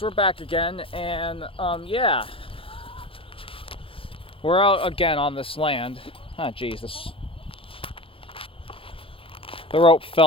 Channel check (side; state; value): right; late; 0.26 ms